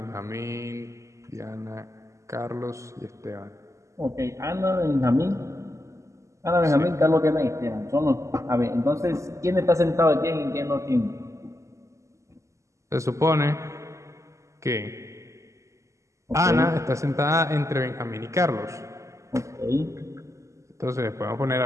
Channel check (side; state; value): left; late; 0.15 ms